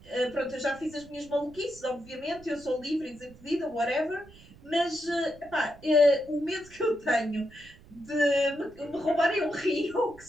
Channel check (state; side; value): noise; right; rumble, 22 dB below the sound